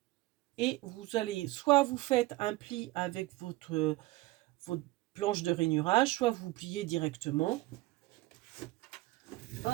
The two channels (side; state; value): left; quieter; 19.4 dB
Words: et vous allez, soit vous faites un pli avec votre planche de rainurage, soit vous pliez directement.